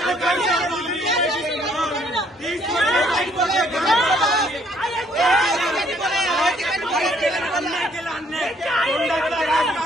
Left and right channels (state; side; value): normal; both; correlation 0.65